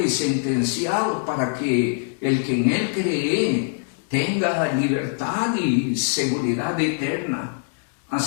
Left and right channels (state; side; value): silent; right; digital silence